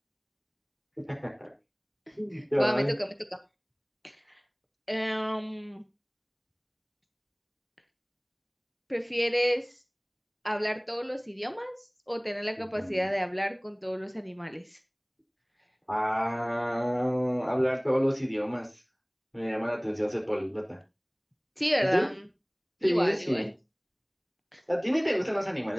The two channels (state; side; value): identical; both; correlation 1.00